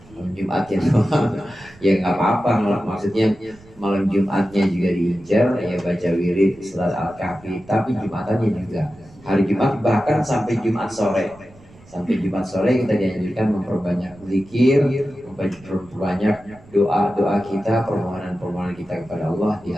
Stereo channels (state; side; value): noise; right; rumble, 24 dB below the sound